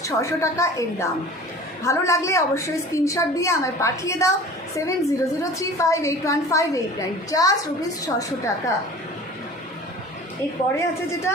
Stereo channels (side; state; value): both; normal; correlation 0.42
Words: ₹600 টাকা এর দাম। ভালো লাগলে অবশ্যই স্ক্রিনশট দিয়ে আমায় পাঠিয়ে দাও 7003581589। জাস্ট ₹600 টাকা। এরপরে আছে যেটা,